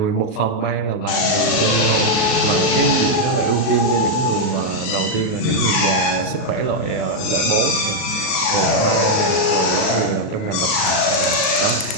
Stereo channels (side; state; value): right; late; 38 ms